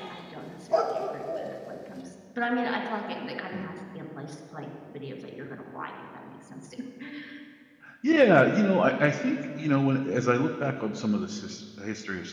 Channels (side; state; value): both; identical; correlation 1.00